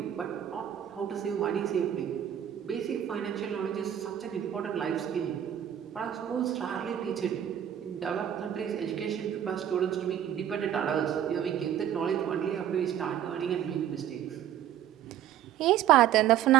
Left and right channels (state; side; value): quieter; left; 10.6 dB